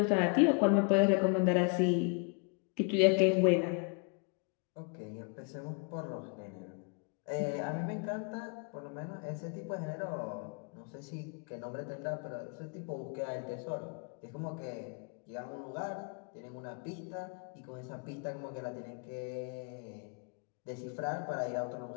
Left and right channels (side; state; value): right; quieter; 37.5 dB